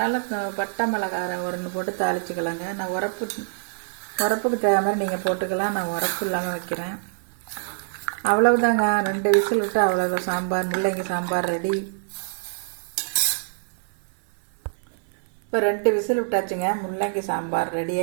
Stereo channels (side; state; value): left; silent; digital silence